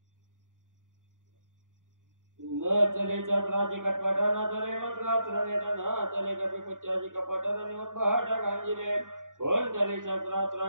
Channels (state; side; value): late; left; 0.88 ms